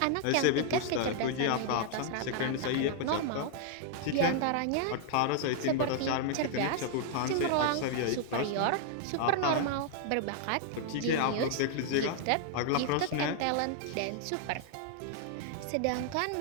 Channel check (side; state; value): both; different; correlation 0.00